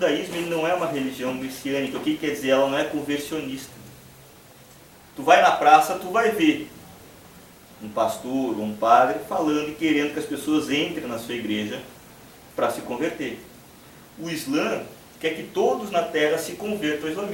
ele não é uma religião messiânica. O que quer dizer? Ela não é conversionista. Tu vai na praça, tu vai ver um pastor ou um padre falando e querendo que as pessoas entrem na sua igreja para se converter. O Islã quer que todos na terra se convertam ao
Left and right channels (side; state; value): both; identical; correlation 1.00